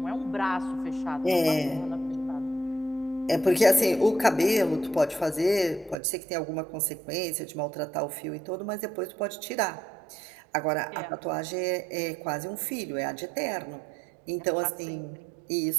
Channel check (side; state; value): left; drops out; at 6.0 s